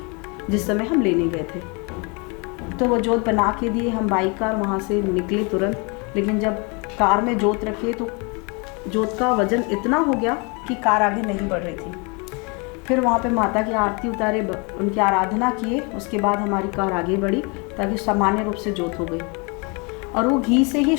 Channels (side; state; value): right; quieter; 31.5 dB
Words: जिस समय हम लेने गए थे। तो वो जोत बना के दिए, हम बाइक कार वहाँ से निकले तुरंत। लेकिन जब कार में जोत रखे तो जोत का वजन इतना हो गया कि कार आगे नहीं बढ़ रही थी। फिर वहाँ पे माता की आरती उतारे, उनकी आराधना किए, उसके बाद हमारी कार आगे बढ़ी ताकि सामान्य रूप से जोत हो गई। और वो घी से ही,